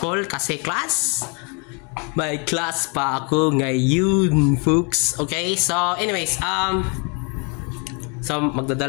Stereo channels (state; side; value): quieter; right; 34.6 dB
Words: kasi class. May class pa ako ngayon, folks. Okay, so anyways, so